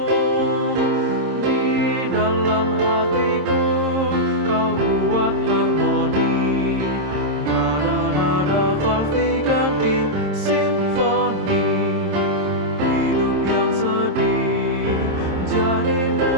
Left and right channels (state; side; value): late; left; 26 ms